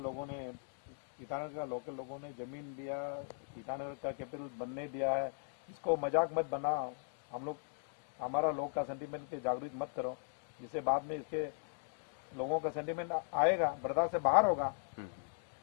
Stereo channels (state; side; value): silent; right; digital silence